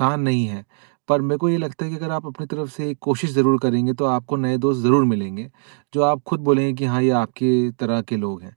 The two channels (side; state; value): left; silent; digital silence